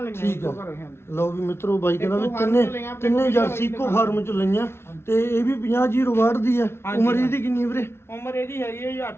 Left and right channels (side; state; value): right; late; 0.12 ms